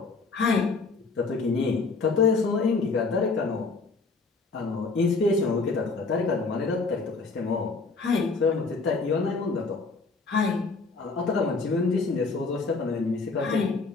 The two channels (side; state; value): right; quieter; 4.1 dB